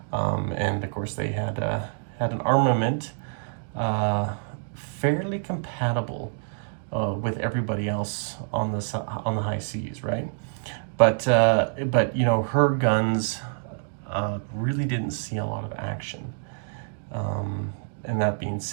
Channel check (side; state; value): left; silent; digital silence